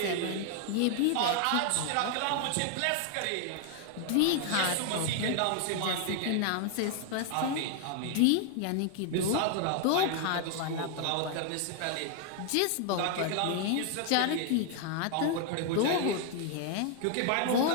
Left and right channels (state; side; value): different; both; correlation 0.00